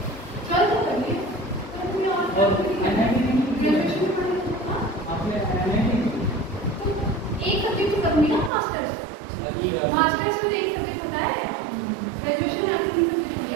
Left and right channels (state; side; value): drops out; left; at 8.5 s